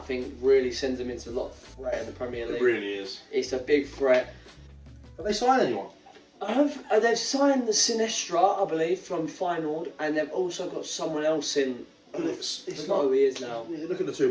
really sends them into a lot of threat in the Premier League. It really is. It's a big threat. Have they signed anyone? They've signed the Sinestra, I believe, from Feyenoord, and they've also got someone else in. It's not who he is now. You look at the two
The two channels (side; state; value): both; identical; correlation 1.00